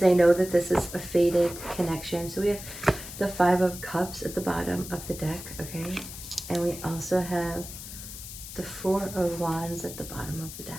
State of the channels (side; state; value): left; noise; hiss, 11 dB below the sound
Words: know that this is a fated connection. So we have the 5 of Cups at the bottom of the deck, okay? And we also have the 4 of Wands at the bottom of the